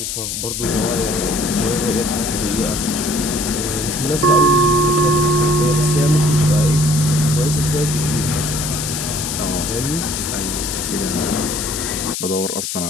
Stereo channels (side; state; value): left; noise; hiss, 4 dB below the sound